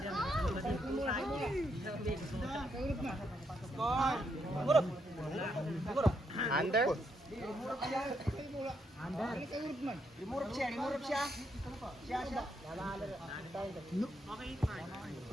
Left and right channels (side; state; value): both; normal; correlation 0.78